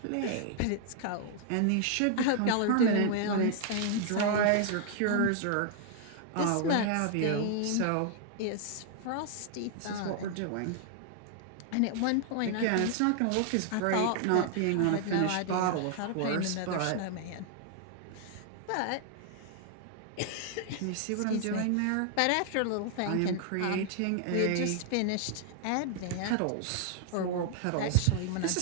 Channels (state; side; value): different; both; correlation 0.00